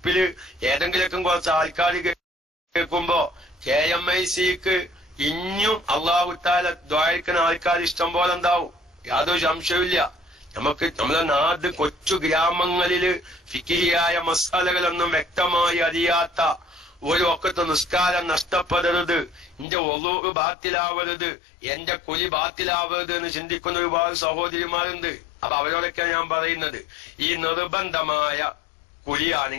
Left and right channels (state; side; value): drops out; right; at 19.7 s